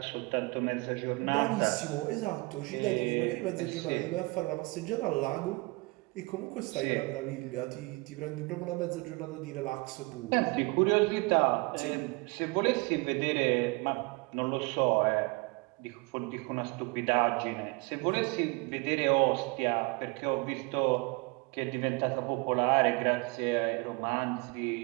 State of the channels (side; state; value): left; quieter; 26.8 dB